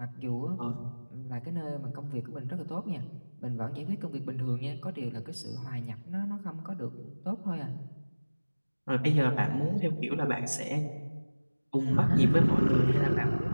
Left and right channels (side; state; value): both; inverted; correlation -1.00